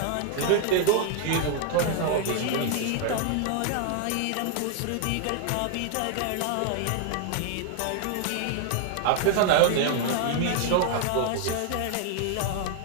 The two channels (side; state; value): both; different; correlation 0.00